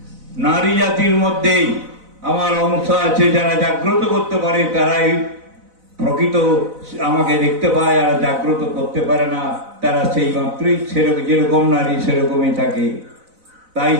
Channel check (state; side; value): late; left; 4.0 ms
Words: নারী জাতির মধ্যেই আমার অংশ আছে, যারা জাগ্রত করতে পারে তারাই প্রকৃত আমাকে দেখতে পায়, আর জাগ্রত করতে পারে না তারা সেই মাত্রই সেরকম, যেরকম নারী সেরকমই থাকে। তাই